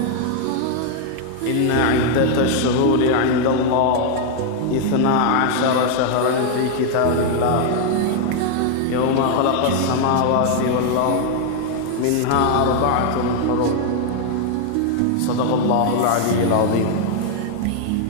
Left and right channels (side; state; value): both; different; correlation 0.00